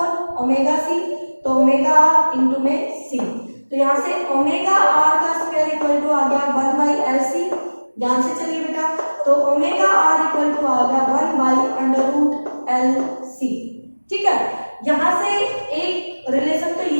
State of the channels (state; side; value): inverted; both; correlation -1.00